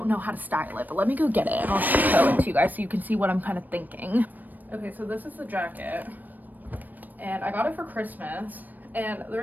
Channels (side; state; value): left; late; 0.086 ms